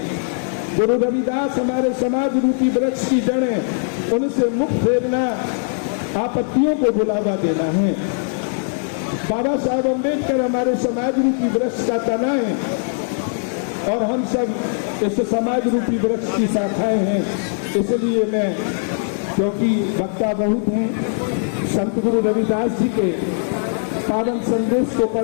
गुरु रविदास हमारे समाज रूपी वृक्ष की जड़ें, उनसे मुख फेरना आपत्तियों को बुलावा देना है। बाबा साहब अम्बेडकर हमारे समाज रूपी वृक्ष का तना है और हम सब इस समाज रूपी वृक्ष की शाखाएं हैं। इसलिए मैं, क्योंकि वक्ता बहुत हैं, संत गुरु रविदास जी के पावन संदेश को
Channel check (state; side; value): silent; right; digital silence